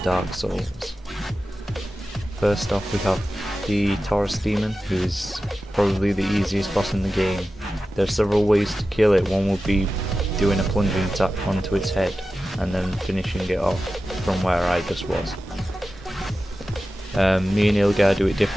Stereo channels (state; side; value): normal; both; correlation 0.93